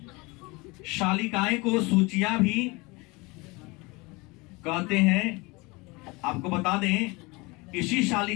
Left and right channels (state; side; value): quieter; right; 25.1 dB